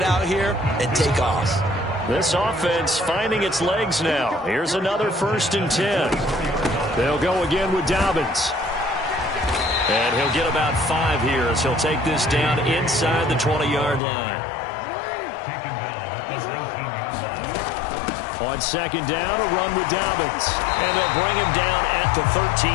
out here and take off. This offense finding its legs now. Here's another 1st and 10. They'll go again with Dobbins. And he'll get about 5 here as he'll take this down inside the 20-yard line. On On second down, a run with Dobbins. And they'll bring him down at the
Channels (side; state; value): right; drops out; at 14.0 s